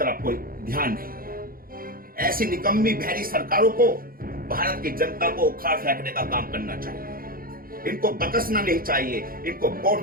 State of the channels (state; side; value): late; left; 0.42 ms